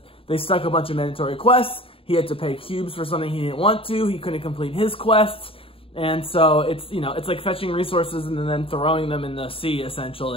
they stuck a bunch of mandatory quests. He had to pay cubes for something he didn't want to. He couldn't complete his quests, and so it's like fetching resources and then throwing them in the sea,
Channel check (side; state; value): right; late; 0.27 ms